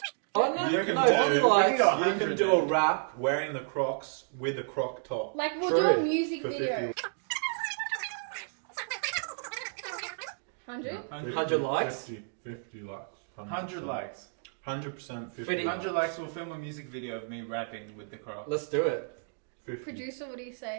Oh no, You can no, do- probably you like. can go. you can do a rap wearing the Crocs with a Croc top. Like, we'll True. do a music For video. 50. 100? 100 likes? 50 likes. 100 likes. 100% 50. 50. 100 likes, we'll film a music video of me rapping with the Crocs. Let's do it. 50. Producer, what do you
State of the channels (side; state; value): left; silent; digital silence